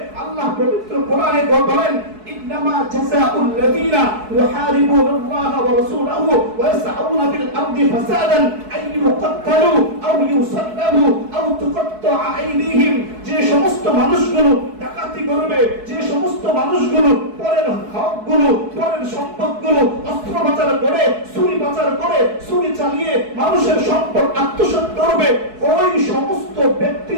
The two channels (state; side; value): late; left; 4.7 ms